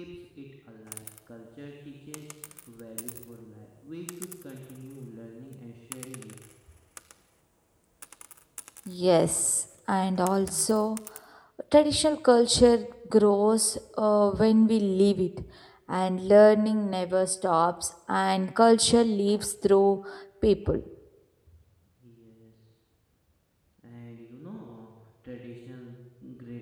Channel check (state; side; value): identical; both; correlation 1.00